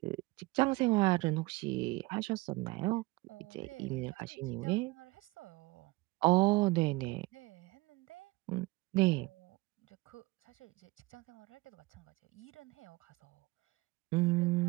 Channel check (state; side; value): quieter; left; 22.8 dB